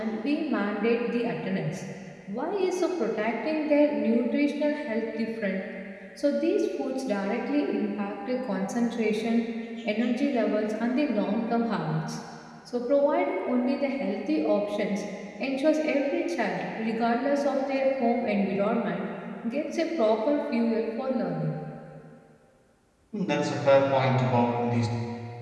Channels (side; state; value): both; identical; correlation 1.00